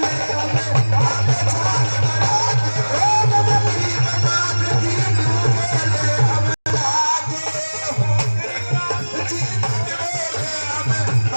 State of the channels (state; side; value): inverted; both; correlation -1.00